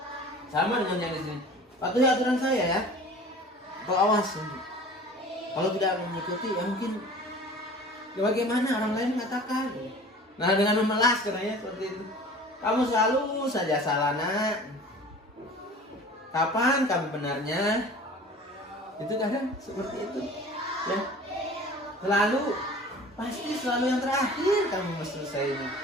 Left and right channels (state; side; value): normal; both; correlation 0.43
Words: sama dengan yang di sini. Patuhi aturan saya ya. kau awas. Kalau tidak mengikuti, ya mungkin ya bagaimana orang lain mengatakan. Nah, dengan memelas katanya seperti itu. Kamu selalu saja salah, nak. Kapan kamu benarnya? Itu kadang seperti itu. Ya. Pasti selalu yang terakhir kamu mesti selesainya.